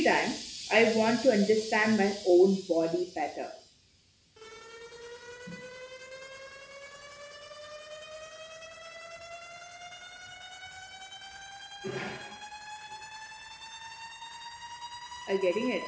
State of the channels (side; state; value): both; identical; correlation 1.00